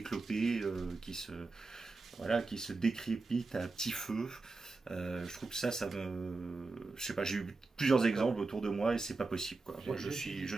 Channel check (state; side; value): quieter; left; 3.7 dB